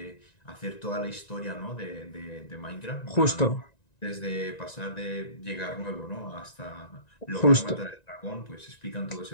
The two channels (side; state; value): right; late; 1.9 ms